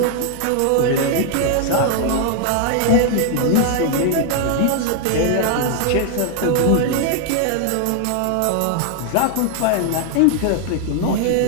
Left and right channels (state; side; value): different; both; correlation 0.00